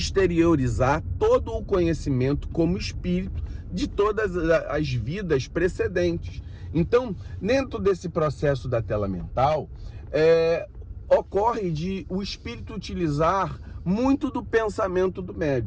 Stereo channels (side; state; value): both; identical; correlation 1.00